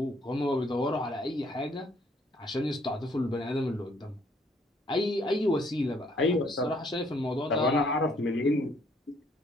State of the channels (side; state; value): both; normal; correlation 0.65